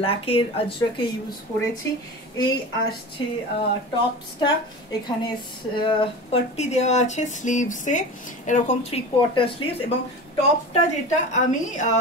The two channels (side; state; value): both; normal; correlation 0.31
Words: আজরকে ইউজ করেছি। এই আসছে টপসটা, এখানে পট্টি দেওয়া আছে স্লিভসে, এরকম 3/4 স্লিভস, এবং টপটা যেটা আমি